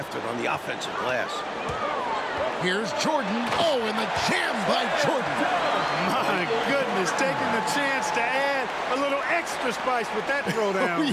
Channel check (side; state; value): both; identical; correlation 1.00